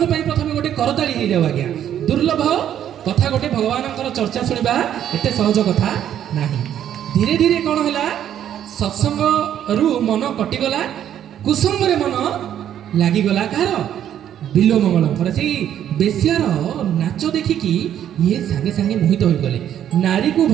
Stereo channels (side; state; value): left; quieter; 10.4 dB